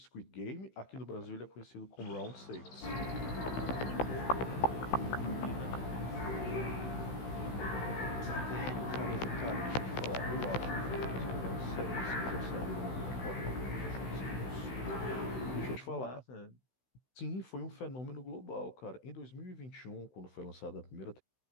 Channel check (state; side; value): late; right; 16 ms